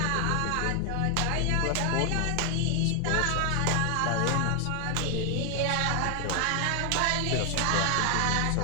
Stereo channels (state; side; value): different; both; correlation 0.00